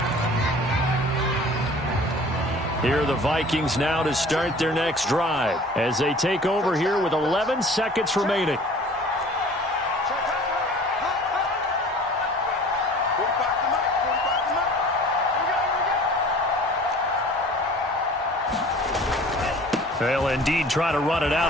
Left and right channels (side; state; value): both; normal; correlation 0.46